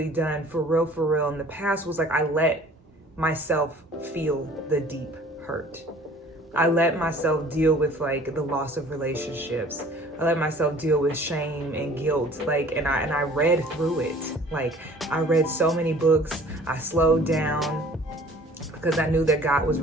done for real in the past was I let myself feel the deep hurt. I let myself deal with the loss of relationships. I let myself deal with shame and guilt. And I read through it. I read so many books. I slowed down because I knew that God was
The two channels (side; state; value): both; normal; correlation 0.51